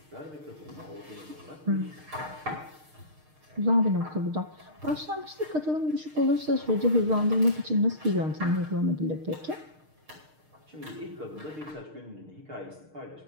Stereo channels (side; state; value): left; late; 6.5 ms